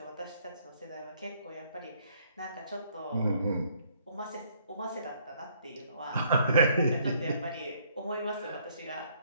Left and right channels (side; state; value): both; inverted; correlation -0.66